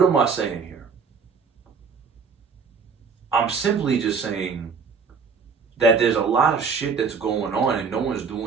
am I saying here? I'm simply just saying that there's a lot of shit that's going on and no one's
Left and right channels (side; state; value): left; quieter; 5.5 dB